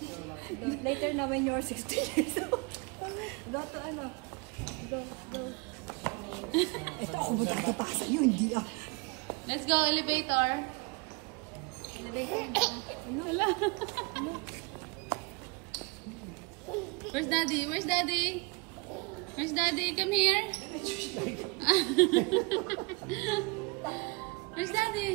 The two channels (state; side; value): quieter; left; 28.2 dB